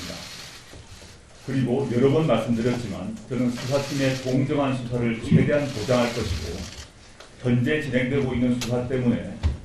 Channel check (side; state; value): both; identical; correlation 1.00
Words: 그리고 여러 번 말씀드렸지만 저는 수사팀의 공정한 수사를 최대한 보장할 것이고 현재 진행되고 있는 수사 때문에